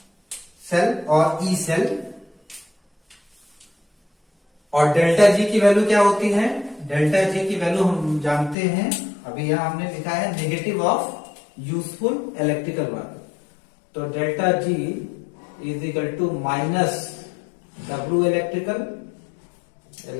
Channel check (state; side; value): drops out; right; at 8.6 s